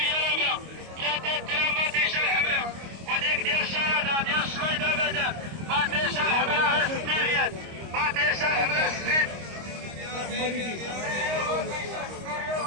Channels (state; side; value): late; left; 26 ms